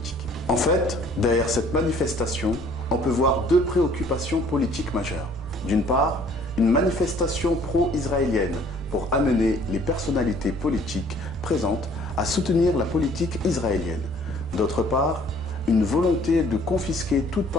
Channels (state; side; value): normal; both; correlation 0.57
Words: En fait, derrière cette manifestation, on peut voir deux préoccupations politiques majeures. D'une part, une manifestation pro-israélienne pour amener les personnalités politiques présentes à soutenir la politique israélienne. D'autre part, une volonté de confisquer toute